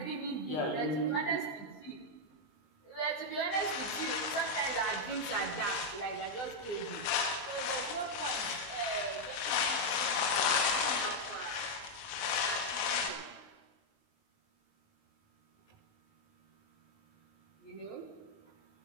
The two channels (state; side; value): late; right; 20 ms